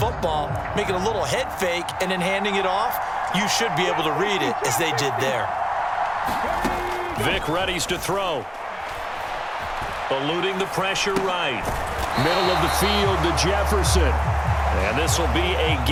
making a little head fake, and then handing it off. You should be able to read it as they did there. Vick readies to throw. Eluding the pressure right. Middle of the field to Jefferson. And this will be a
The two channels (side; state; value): both; identical; correlation 1.00